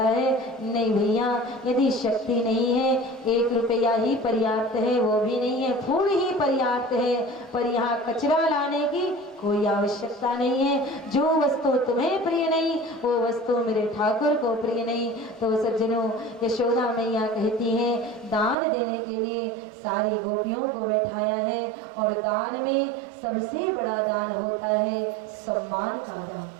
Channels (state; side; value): drops out; left; at 18.6 s